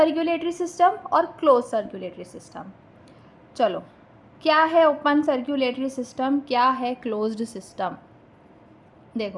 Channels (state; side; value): identical; both; correlation 1.00